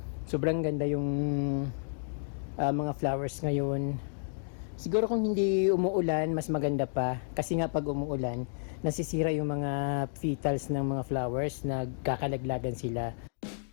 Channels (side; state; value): right; silent; digital silence